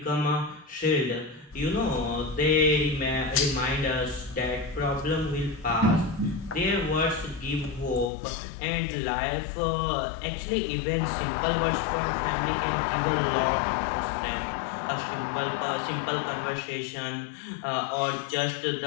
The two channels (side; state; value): right; drops out; at 8.1 s